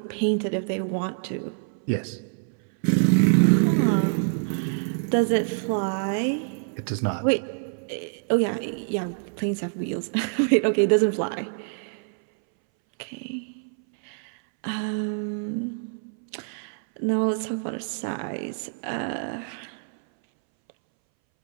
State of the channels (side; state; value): left; silent; 61 dB below the other